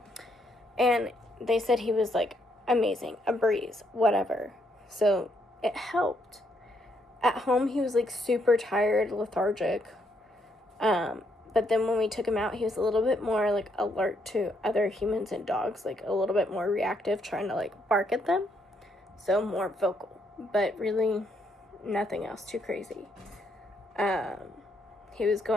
And they said he was like amazing, a breeze, whatever. So it helped. At home, he was like super tired, lethargic. But then when we took him out, he was a little bit more like alert to other humans and dogs, like a little bit more reactive, trying to like bark at them. So more vocal, but really nothing else too crazy. He was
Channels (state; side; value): normal; both; correlation 0.74